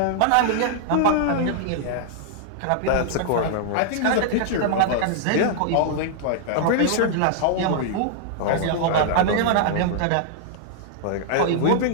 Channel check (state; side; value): different; both; correlation -0.01